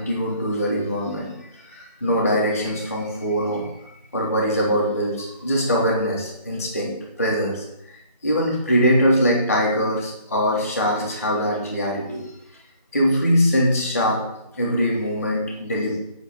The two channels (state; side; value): inverted; both; correlation -0.57